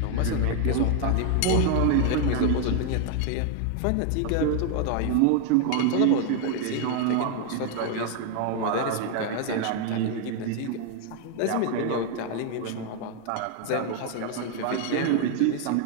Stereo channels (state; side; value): different; both; correlation 0.00